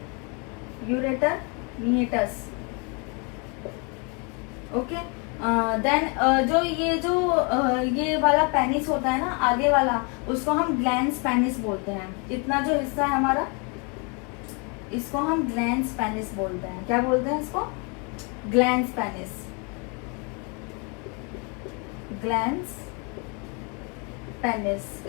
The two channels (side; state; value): right; quieter; 33.8 dB